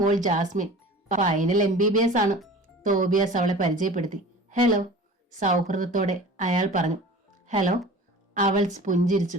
ജാസ്മിൻ, ഫൈനൽ MBBS ആണ്. തോബിയാസ് അവളെ പരിചയപ്പെടുത്തി. ഹലോ, സൗഹൃദത്തോടെ അയാൾ പറഞ്ഞു. ഹലോ, അവൾ പുഞ്ചിരിച്ചു.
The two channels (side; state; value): both; normal; correlation 0.40